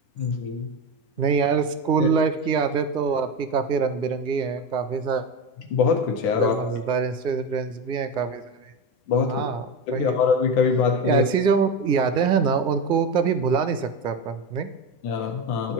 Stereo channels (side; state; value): right; late; 9.8 ms